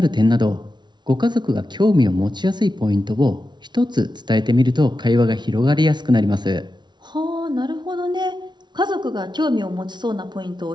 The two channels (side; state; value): left; late; 0.21 ms